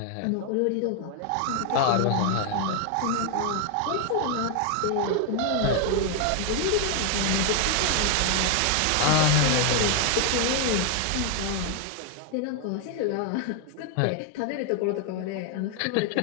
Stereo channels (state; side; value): different; both; correlation 0.01